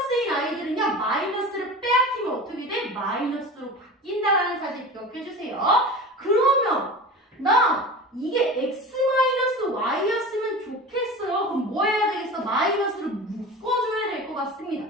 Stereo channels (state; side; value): normal; both; correlation 0.33